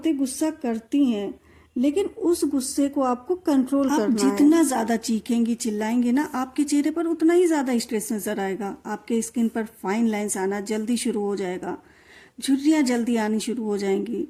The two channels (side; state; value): both; identical; correlation 1.00